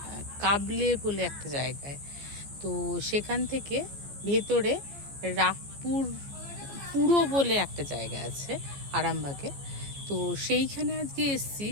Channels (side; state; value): left; late; 14 ms